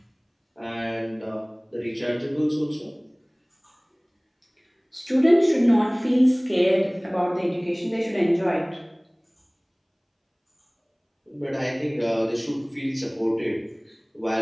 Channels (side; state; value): both; identical; correlation 1.00